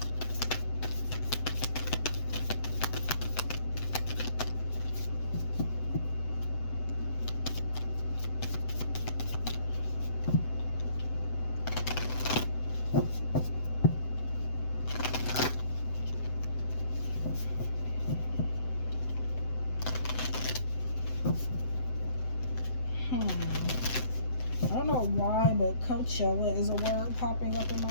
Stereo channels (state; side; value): late; right; 7.9 ms